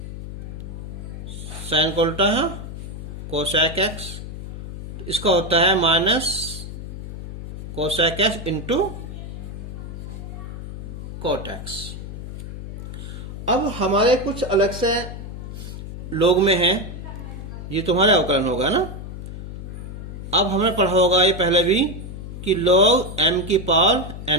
sine का उल्टा है कोसेक एक्स, इसका होता है minus cosec x into cot x. अब हमारे कुछ अलग से लोग में है, ये तुम्हारे अवकलन होगा ना। अब हमने पढ़ा होगा ये पहले भी कि log m की पावर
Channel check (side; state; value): left; noise; hum, 9 dB below the sound